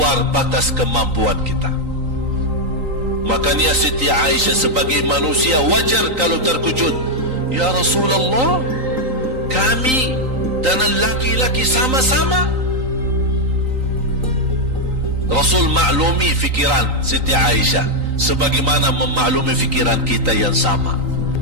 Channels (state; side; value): late; left; 3.9 ms